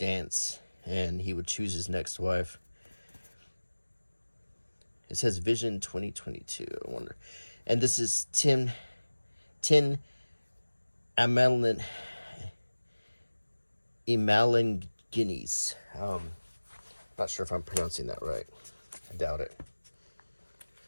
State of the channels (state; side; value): inverted; both; correlation -1.00